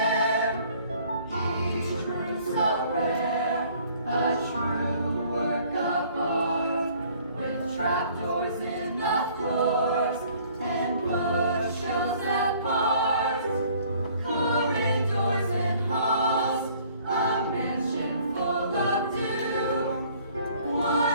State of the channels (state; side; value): inverted; both; correlation -0.57